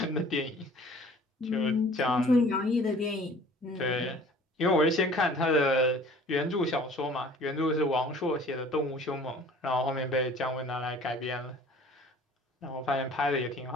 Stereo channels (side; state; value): both; normal; correlation 0.50